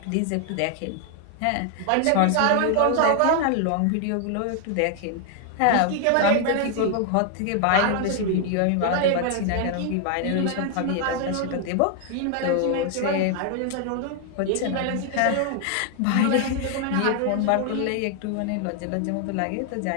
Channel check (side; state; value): both; different; correlation 0.00